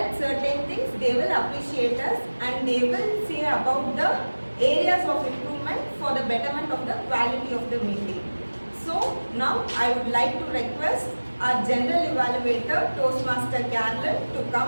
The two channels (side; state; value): both; inverted; correlation -1.00